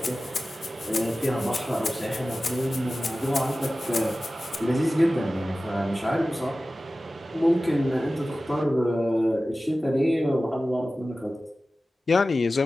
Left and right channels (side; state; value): both; normal; correlation 0.96